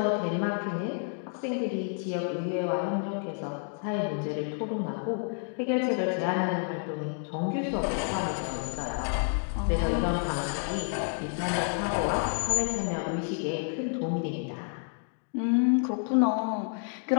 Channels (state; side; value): silent; right; 56 dB below the other